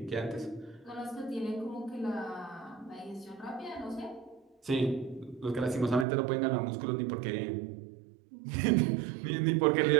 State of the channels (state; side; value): drops out; left; at 6.1 s